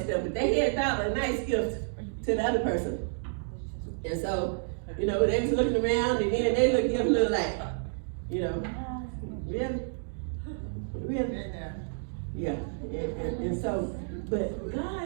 stuff. But they had thought a nice gift to the other person. And so, you know, they was looking around and then they give a little like, you know, really? Yeah. And so, but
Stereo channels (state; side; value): silent; left; digital silence